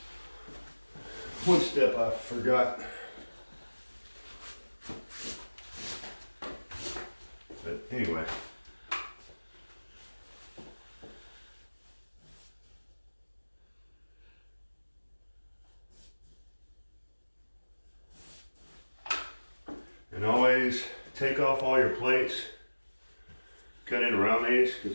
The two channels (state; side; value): inverted; both; correlation -1.00